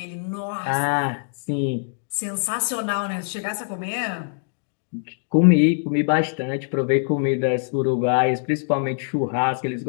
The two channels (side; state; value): right; silent; digital silence